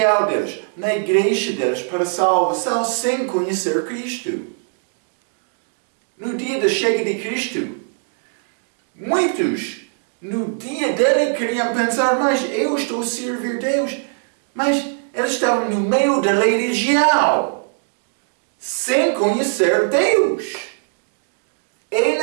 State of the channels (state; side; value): silent; left; digital silence